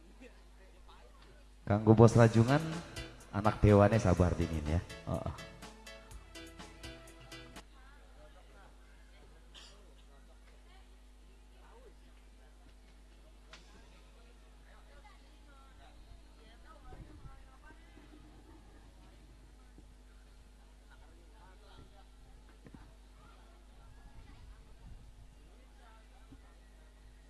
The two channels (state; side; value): identical; both; correlation 1.00